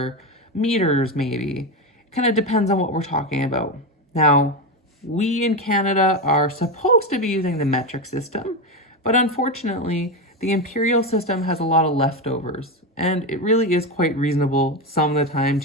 meters maybe. Kind of depends on what we're talking about. Now, we in Canada are supposed to be using the metric system, but unfortunately, the imperial system has a lot of leftovers, and it really is quite reasonable some of the time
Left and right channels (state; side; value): normal; both; correlation 0.14